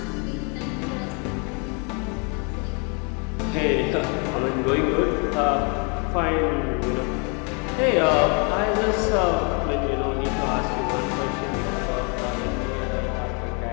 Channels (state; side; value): quieter; right; 35.1 dB